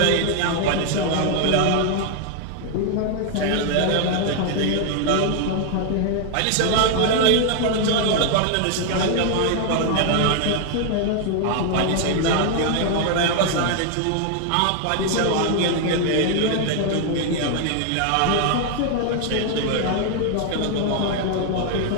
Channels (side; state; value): both; different; correlation 0.00